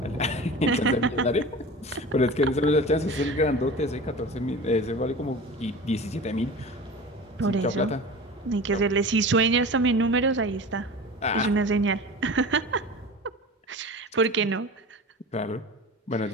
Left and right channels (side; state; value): both; normal; correlation 0.34